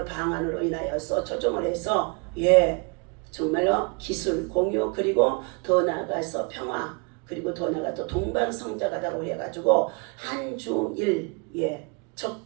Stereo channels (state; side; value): quieter; left; 33.7 dB